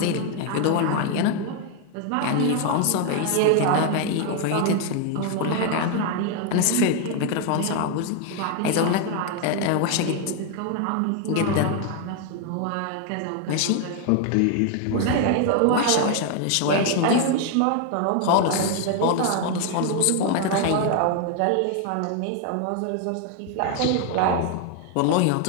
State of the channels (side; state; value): both; different; correlation 0.00